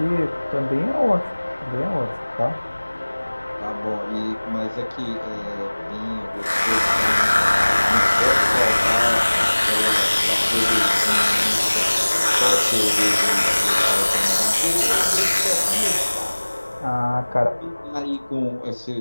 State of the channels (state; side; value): inverted; both; correlation -1.00